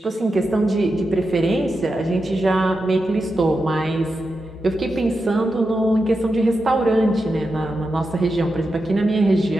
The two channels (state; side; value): normal; both; correlation 0.89